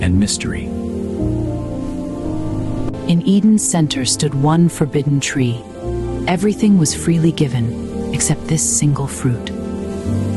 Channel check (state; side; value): identical; both; correlation 1.00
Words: mystery. In Eden's center stood one forbidden tree. Everything was freely given, except this single fruit.